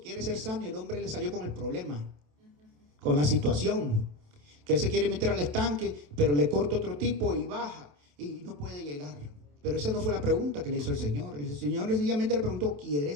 ser sano? Y el hombre le salió con el problema, con la situación, que él se quiere meter al estanque, pero le corta otro tipo y baja y no puede llegar. Pero esa no fue la pregunta que le hizo el Señor. El Señor sencillamente le preguntó:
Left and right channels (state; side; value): late; left; 27 ms